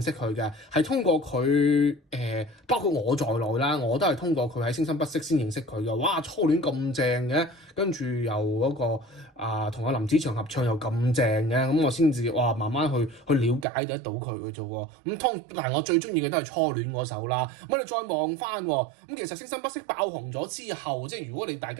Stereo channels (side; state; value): left; drops out; at 13.7 s